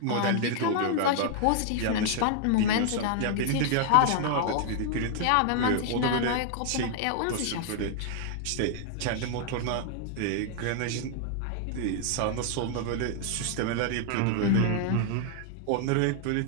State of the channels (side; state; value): both; different; correlation 0.00